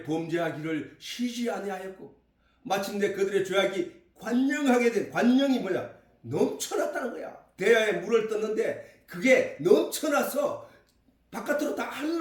범죄하기를 쉬지 아니하였고 마침내 그들의 죄악이 관영하게 된, 관영이 뭐냐? 넘쳐났다는 거야. 대야에 물을 떴는데 그게 넘쳐나서 바깥으로 다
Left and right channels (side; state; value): both; identical; correlation 1.00